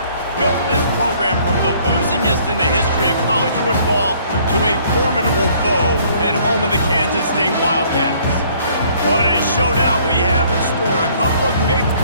built this program from the losingest in the history of college football to a formidable foe and home of the Kansas State Wildcats. What a showdown we have in store. A couple of Big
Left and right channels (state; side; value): inverted; both; correlation -0.60